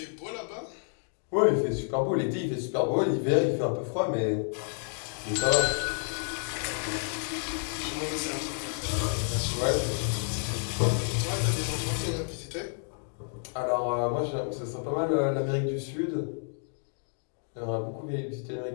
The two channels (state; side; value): silent; right; 58 dB below the other